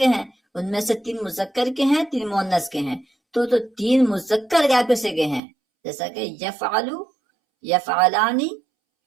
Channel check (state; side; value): drops out; left; at 5.4 s